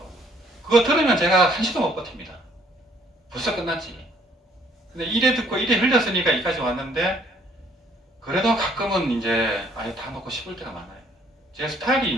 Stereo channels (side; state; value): both; normal; correlation 0.63